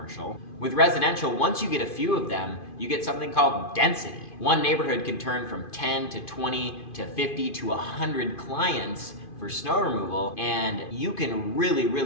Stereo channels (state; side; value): late; right; 2.5 ms